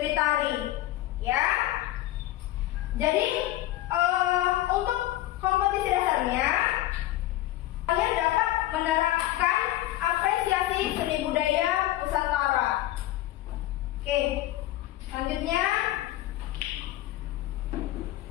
tari. Ya, jadi untuk kompetisi dasarnya kalian dapat menerapkan apresiasi seni budaya Nusantara. Oke, selanjutnya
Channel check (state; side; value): quieter; right; 15.2 dB